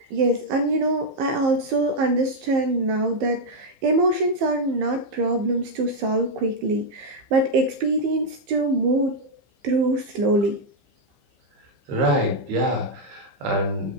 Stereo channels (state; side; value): late; left; 15 ms